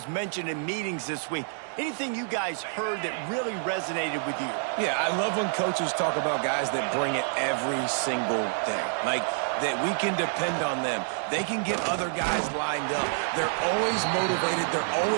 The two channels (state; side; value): silent; left; 59 dB below the other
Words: mentioned in meetings this week. Anything you guys heard that really resonated with you? Yeah, I love when coaches talk about guys that bring it every single day. Like, that we can depend on them. They can get other guys lined up. They're always motivated. They're